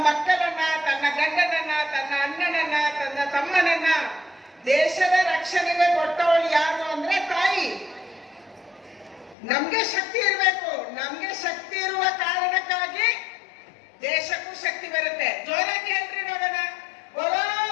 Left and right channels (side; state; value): right; drops out; at 9.3 s